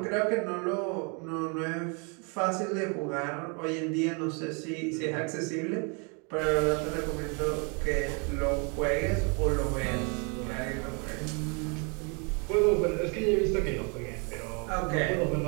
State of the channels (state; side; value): quieter; left; 34.8 dB